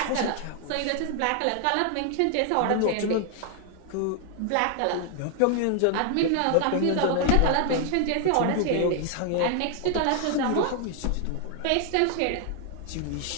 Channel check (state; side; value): different; both; correlation 0.00